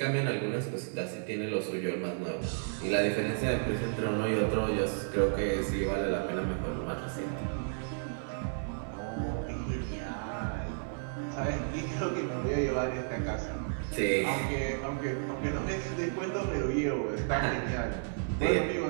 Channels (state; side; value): silent; left; 56 dB below the other